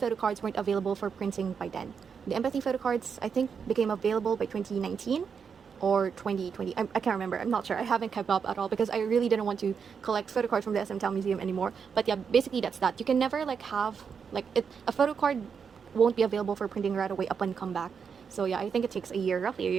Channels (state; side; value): quieter; left; 6.4 dB